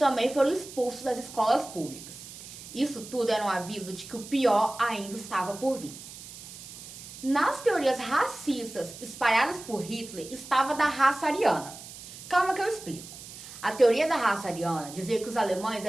foram expulsos das escolas públicas. Isso tudo era um aviso de que o pior ainda estava por vir. Nas teorias racistas espalhadas por Hitler estava da raça ariana. Calma que eu explico. A teoria da raça ariana dizia que os alemães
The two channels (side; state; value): right; noise; hiss, 14 dB below the sound